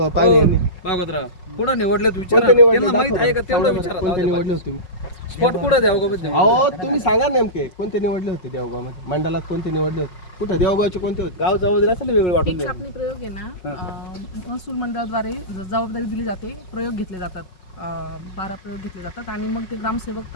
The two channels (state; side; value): late; right; 5.5 ms